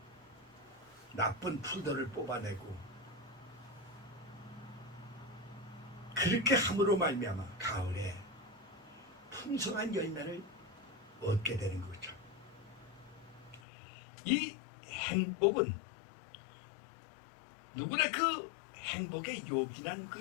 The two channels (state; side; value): drops out; right; at 13.6 s